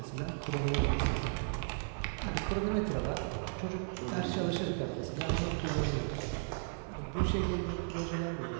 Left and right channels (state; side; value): silent; left; digital silence